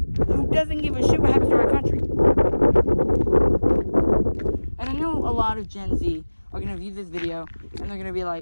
who doesn't give a shit what happens to our country. And I know a lot of Gen Z are going to view this video and they're going to be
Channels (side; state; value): both; inverted; correlation -1.00